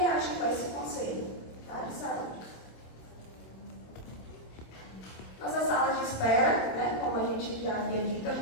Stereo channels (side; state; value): right; late; 26 ms